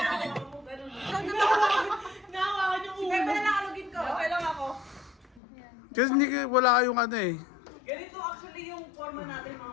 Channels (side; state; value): right; drops out; at 5.4 s